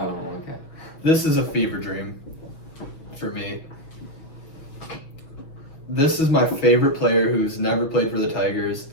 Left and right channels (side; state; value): right; late; 6.3 ms